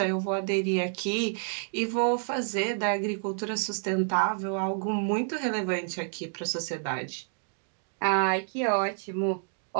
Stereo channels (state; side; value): silent; left; digital silence